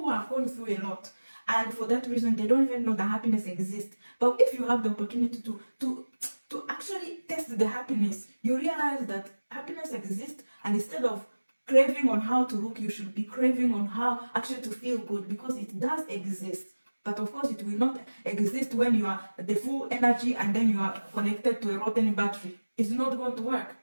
have gone through a lot, and for that reason they don't even know that happiness exists. But if you have the opportunity to actually test the happiness, you realize that happiness exists, and instead of craving on how to look, you should be craving on how actually to feel good, because it does exist. But of course it will not exist when you are the full energy and then you are connected to a rotten battery. It's not going to work.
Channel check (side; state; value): both; inverted; correlation -1.00